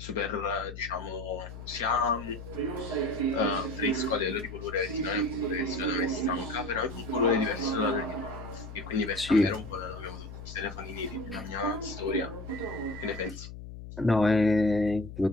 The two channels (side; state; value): left; noise; hum, 12 dB below the sound